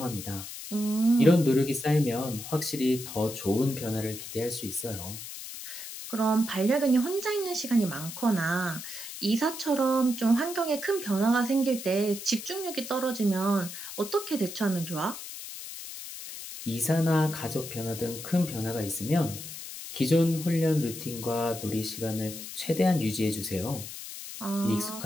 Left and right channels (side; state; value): left; noise; hiss, 10 dB below the sound